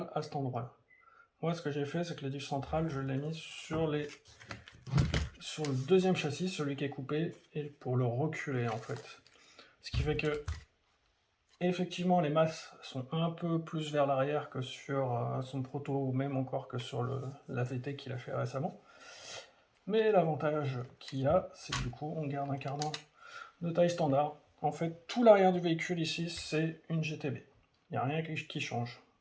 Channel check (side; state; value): both; identical; correlation 1.00